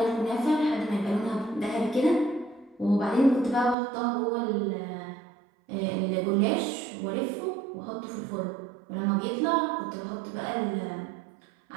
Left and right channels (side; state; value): left; drops out; at 3.8 s